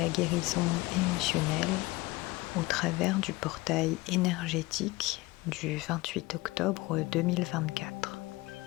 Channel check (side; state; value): right; quieter; 21.2 dB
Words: guérison émotionnelle au travers du portail énergétique du 28 octobre 2024.